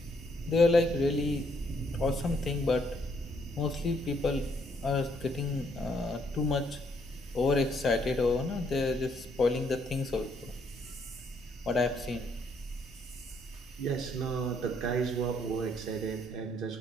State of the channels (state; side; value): normal; both; correlation 0.70